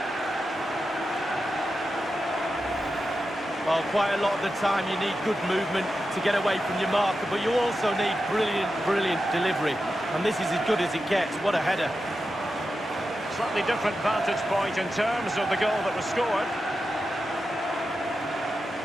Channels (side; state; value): both; normal; correlation 0.90